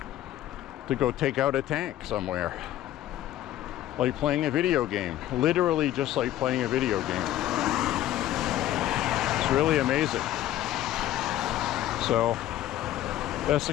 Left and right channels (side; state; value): right; quieter; 13.2 dB